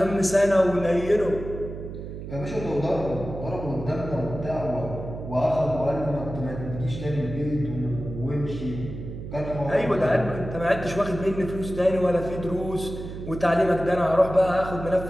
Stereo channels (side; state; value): right; noise; hum, 9 dB below the sound